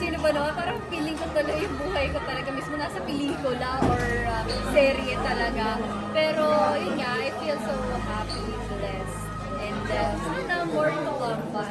ba naman? Parang feeling ko tuloy yung buhay ko talaga mismo nasa pelikula or serye talaga. Pero, yun nga, I feel so happy, blessed. And sana more to come pa.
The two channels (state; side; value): identical; both; correlation 1.00